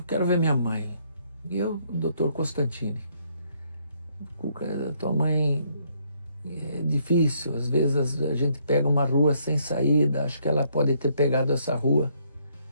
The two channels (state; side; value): inverted; both; correlation -0.70